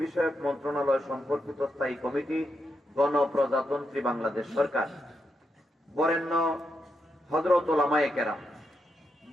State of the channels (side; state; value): both; normal; correlation 0.84